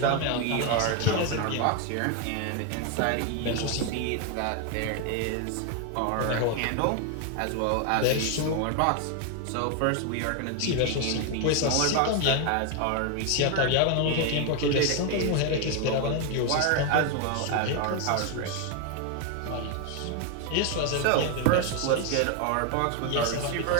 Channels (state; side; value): different; both; correlation 0.01